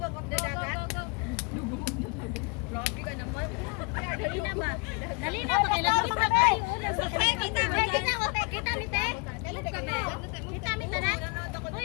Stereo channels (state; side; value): quieter; right; 32.4 dB